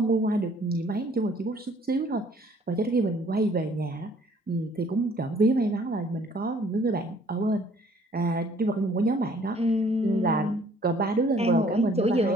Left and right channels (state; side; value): normal; both; correlation 0.59